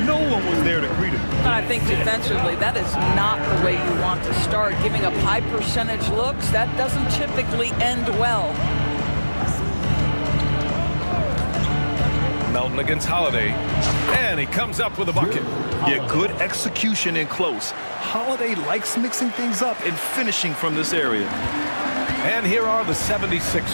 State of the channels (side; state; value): both; inverted; correlation -1.00